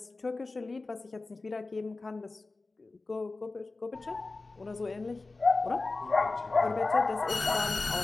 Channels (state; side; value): quieter; right; 3.5 dB